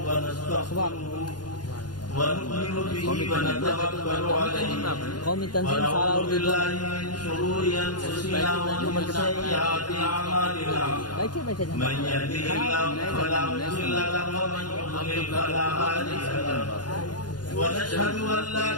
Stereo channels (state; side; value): late; right; 0.70 ms